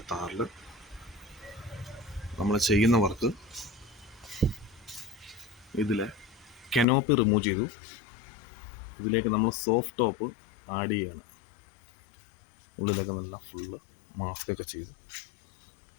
താറിൽ നമ്മൾ ചെയ്യുന്ന വർക്ക്, ഇതിലെ കനോപ്പി റിമൂവ് ചെയ്തു. ഇതിലേക്ക് നമ്മൾ സോഫ്റ്റ് ടോപ്പ് ആഡ് ചെയ്യാണ്. ഉള്ളിലൊക്കെ നല്ല ഫുള്ള് മാസ്കൊക്കെ ചെയ്ത്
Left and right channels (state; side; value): drops out; right; at 6.9 s